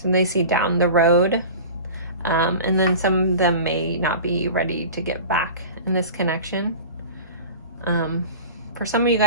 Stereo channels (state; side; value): inverted; both; correlation -0.37